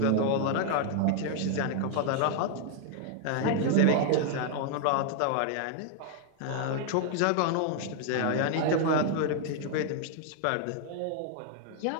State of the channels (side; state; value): both; different; correlation 0.00